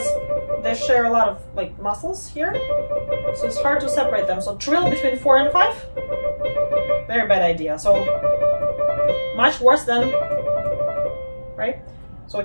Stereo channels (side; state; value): both; inverted; correlation -1.00